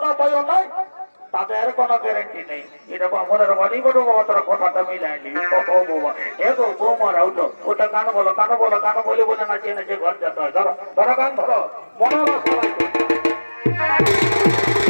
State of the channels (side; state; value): both; inverted; correlation -1.00